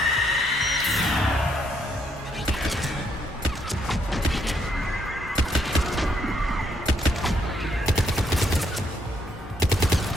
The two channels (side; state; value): both; normal; correlation 0.74